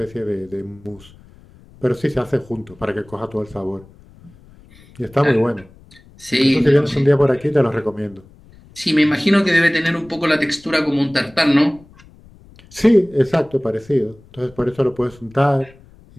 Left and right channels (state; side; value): noise; left; rumble, 25 dB below the sound